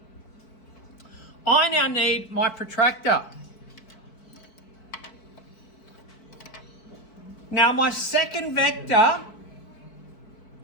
I now need my protractor. Now my second vector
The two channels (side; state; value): right; late; 4.6 ms